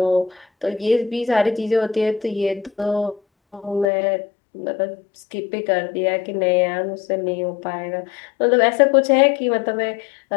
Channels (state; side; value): drops out; right; at 3.9 s